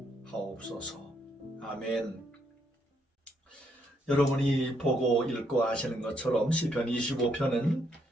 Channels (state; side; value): normal; both; correlation 0.74